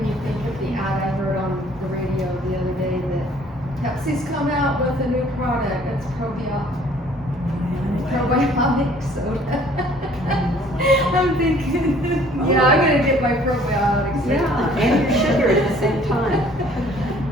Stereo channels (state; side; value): normal; both; correlation 0.56